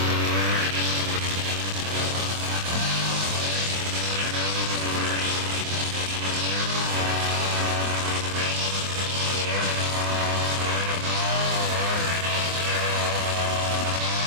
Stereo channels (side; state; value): left; late; 24 ms